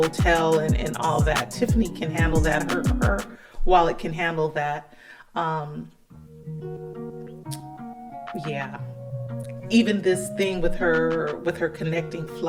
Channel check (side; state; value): both; identical; correlation 1.00